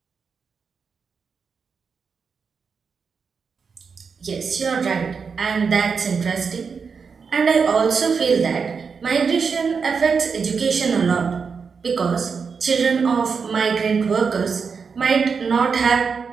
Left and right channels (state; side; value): quieter; left; 5.6 dB